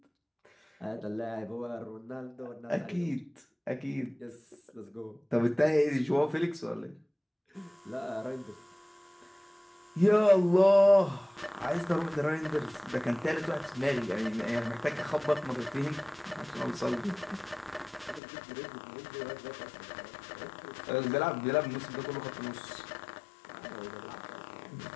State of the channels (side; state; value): right; drops out; at 18.2 s